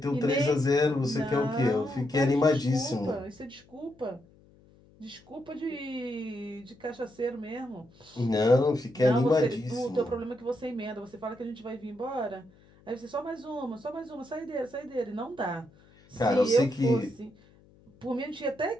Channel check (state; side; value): noise; left; hum, 28 dB below the sound